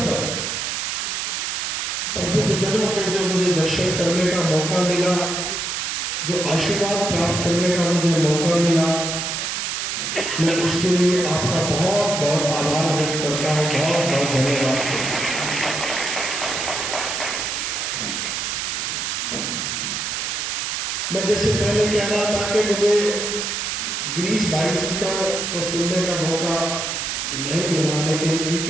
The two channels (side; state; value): right; noise; hiss, 2 dB below the sound